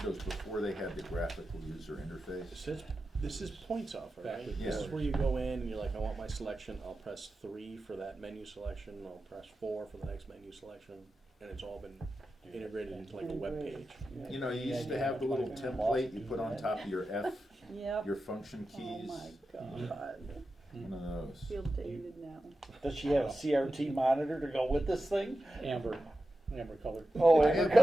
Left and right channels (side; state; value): both; normal; correlation 0.92